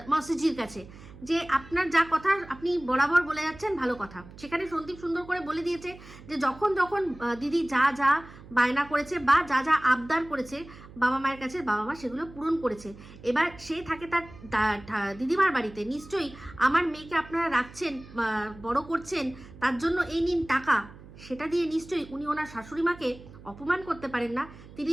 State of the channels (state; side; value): noise; right; hum, 18 dB below the sound